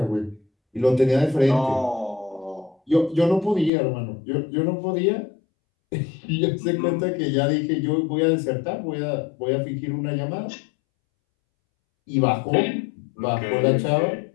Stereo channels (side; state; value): right; drops out; at 3.7 s